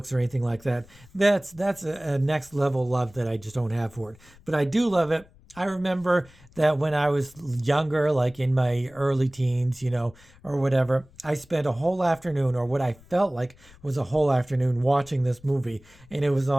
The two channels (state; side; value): noise; left; rumble, 25 dB below the sound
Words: or anything like that. That's a next level love that I just don't have for it. But I do love it. I remember that when I was younger, like in my early teens, or whatever, I spent a whole afternoon, or what I felt like was a whole afternoon, watching this movie. And it was